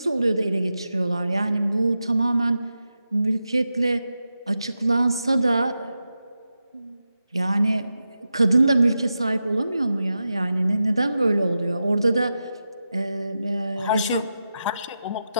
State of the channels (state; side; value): inverted; both; correlation -0.90